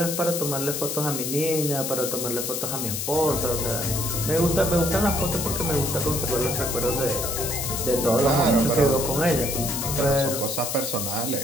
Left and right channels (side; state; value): left; noise; hiss, 3 dB below the sound